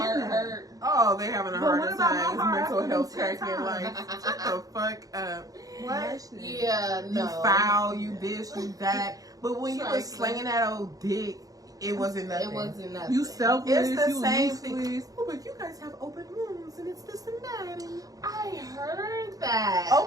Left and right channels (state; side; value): late; left; 0.17 ms